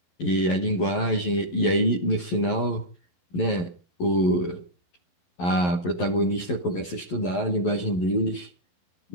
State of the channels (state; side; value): late; right; 11 ms